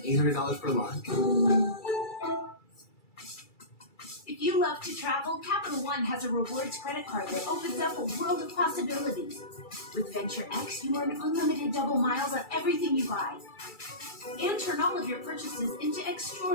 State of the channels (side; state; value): right; late; 2.3 ms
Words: per line. If you love to travel, Capital One has a rewards credit card that opens up a world of possibilities. With Venture X, you earn unlimited double miles on everything you buy. And turn all of your purchases into